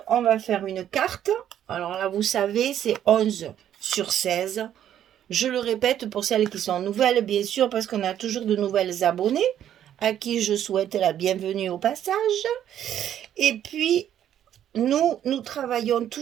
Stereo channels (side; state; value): left; quieter; 10.6 dB